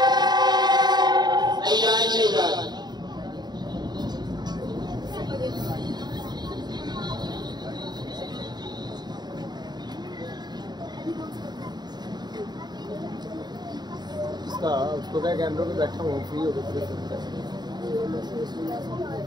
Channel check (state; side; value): late; left; 0.20 ms